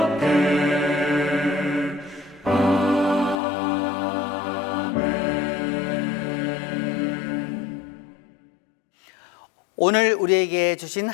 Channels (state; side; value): drops out; right; at 3.4 s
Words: 오늘 우리에게 주신